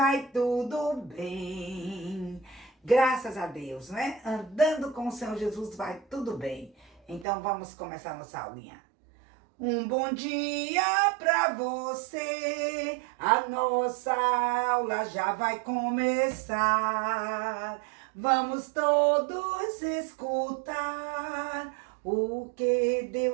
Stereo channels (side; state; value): left; drops out; at 7.2 s